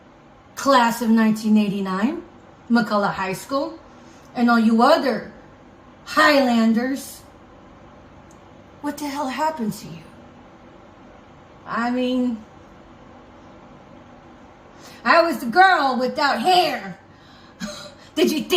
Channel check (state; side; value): identical; both; correlation 1.00